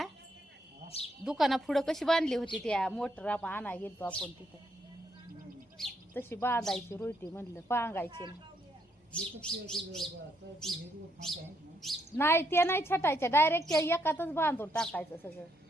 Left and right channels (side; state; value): both; normal; correlation 0.75